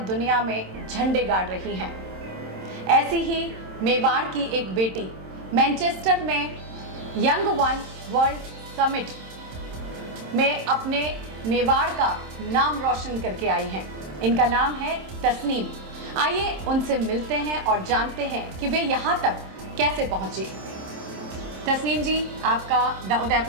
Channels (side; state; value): left; late; 27 ms